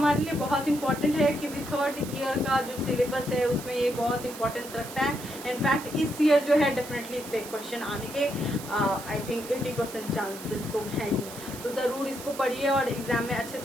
लिए बहुत इंपॉर्टेंट है क्योंकि थर्ड ईयर का जो सिलेबस है उसमें ये बहुत इंपॉर्टेंस रखता है। इनफैक्ट इस ईयर जो है डेफिनेटली इससे क्वेश्चन आने के आई थिंक 80% चांसेस तो है ही। तो जरूर इसको पढ़िए और एग्जाम में अच्छे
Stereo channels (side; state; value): right; noise; hiss, 13 dB below the sound